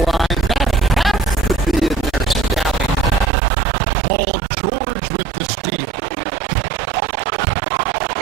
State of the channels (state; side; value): drops out; left; at 3.3 s